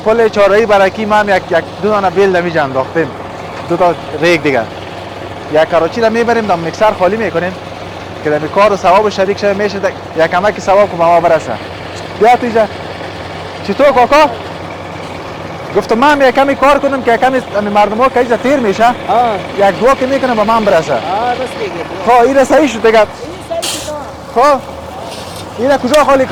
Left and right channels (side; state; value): both; identical; correlation 1.00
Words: پل چهارراهی برکی ما هم یک دو دانه بیل در اینجا انداختیم دو تا ریگ دیگه یک کراچی را میبریم در میکسر خالی میکنیم که در این کار و ثواب شریک شده میشه یک کمکی ثواب که به ما برسه بیا تو اینجا چطور کاکا گفتم من یک کمی کار کنم که کمی مردم ها که اینجا تیر میشه یک دو که میکنم به من برسه خب این صحیح شد دیگه خب این کجا خالی